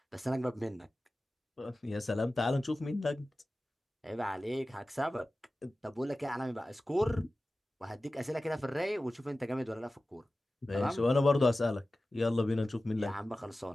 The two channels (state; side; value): normal; both; correlation 0.96